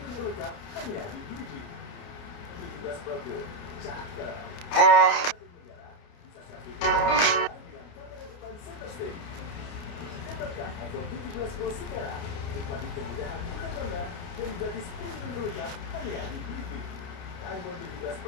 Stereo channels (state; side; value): late; right; 29 ms